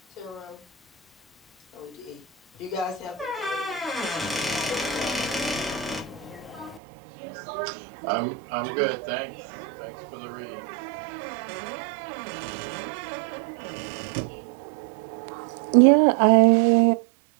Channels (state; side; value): drops out; left; at 6.8 s